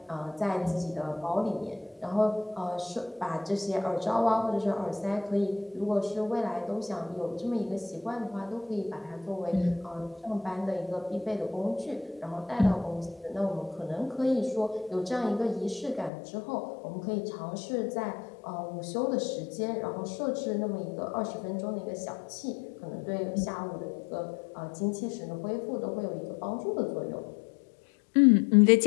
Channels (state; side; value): drops out; right; at 16.1 s